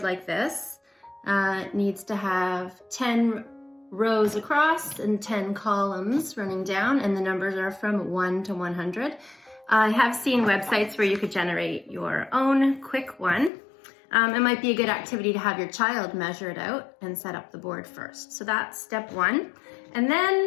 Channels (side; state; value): right; drops out; at 13.5 s